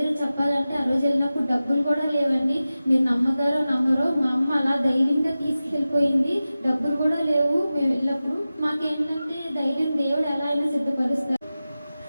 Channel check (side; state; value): both; inverted; correlation -0.95